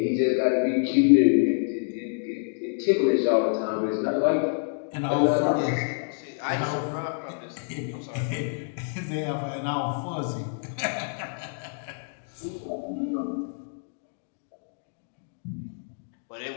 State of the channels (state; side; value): silent; right; digital silence